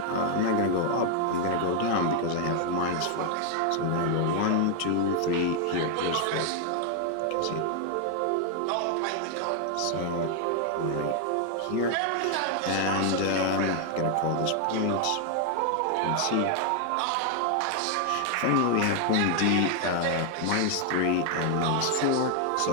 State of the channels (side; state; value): both; different; correlation 0.00